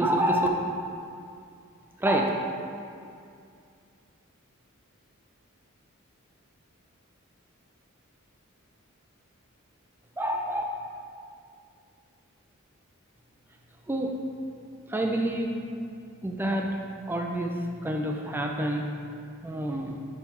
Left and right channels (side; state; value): both; normal; correlation 0.55